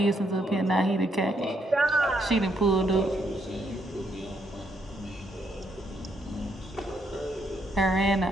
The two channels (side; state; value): both; normal; correlation 0.75